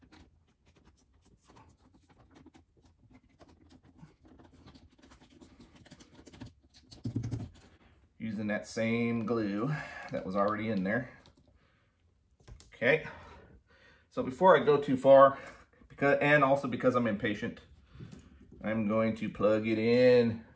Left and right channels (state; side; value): identical; both; correlation 1.00